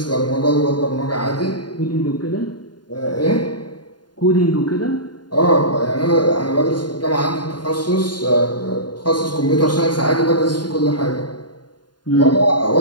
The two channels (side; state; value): right; late; 0.70 ms